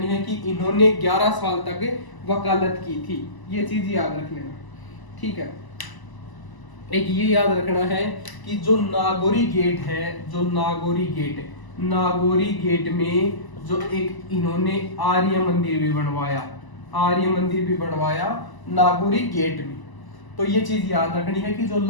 है कि इन्होंने 11 साल तक वकालत की थी, ये चीज याद रख लेना, ठीक है। एक ये याद रखना है कि जो नागौरी गेट है, जो नागौरी गेट में जो एक इन्होंने आर्य मंदिर भी बनवाया, आर्य मंदिर भी बनवाया नागौरी गेट में। तो ये चीज याद रखनी है कि जो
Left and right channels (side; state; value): right; late; 1.0 ms